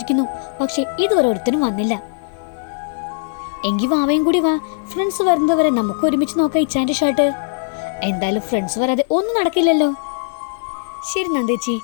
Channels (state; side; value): silent; right; 55 dB below the other